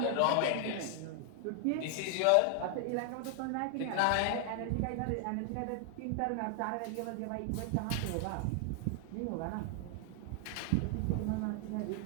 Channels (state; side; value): different; both; correlation 0.00